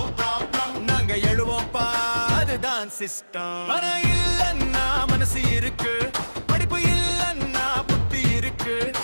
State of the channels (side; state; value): both; inverted; correlation -1.00